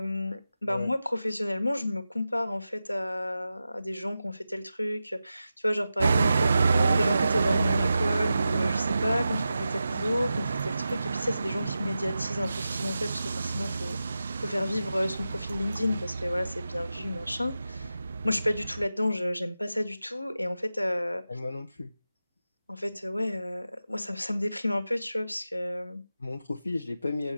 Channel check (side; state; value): both; inverted; correlation -0.92